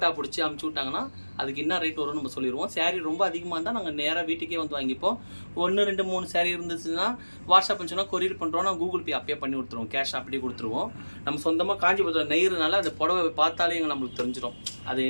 பிடிச்சி அமுச்சு விட்டாங்கன்னா அதுக்கு என்ன ரேட் வரும்னு நம்ம சொல்லிடுவோம். சேரீ ரொம்ப அதிகமாக இருந்தால் நாங்கள் நேராக வீட்டுக்கே வந்து வாங்கிப்போம். 1, 2, 3 சேரீ இருந்துச்சுன்னா வாட்ஸ்அப் சொன்னால் கொரியர் பண்ணுறோம், நான் கூகுள் பே அப்பயே பண்ணி கொடுத்துருவோம், கேஷ் அப்படியே கொடுத்துருவோம். நம்ம சொந்தமாக காஞ்சிபுரத்தில் நெய்கிறதுனால அந்த புடவை பார்த்தாலே நம்மளுக்கு தெரிஞ்சிடும் அது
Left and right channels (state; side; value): inverted; both; correlation -1.00